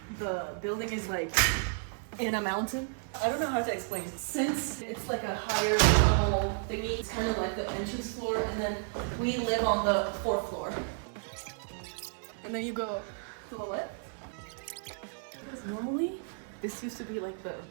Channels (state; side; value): silent; left; 56 dB below the other